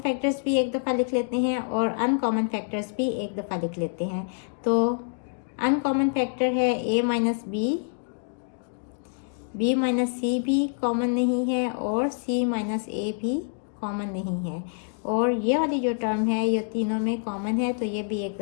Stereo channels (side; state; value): right; silent; digital silence